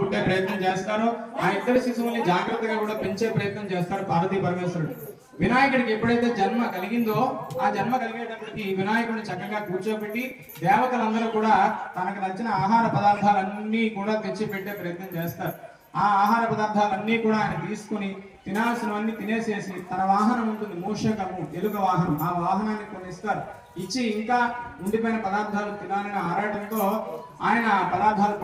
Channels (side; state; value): both; identical; correlation 1.00